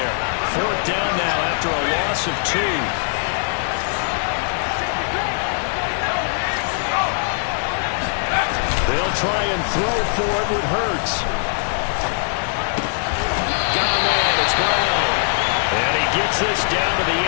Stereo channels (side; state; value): right; silent; 61 dB below the other